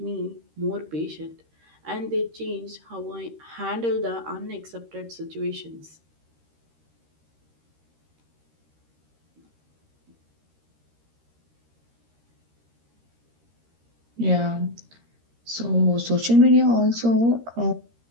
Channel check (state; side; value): late; left; 13 ms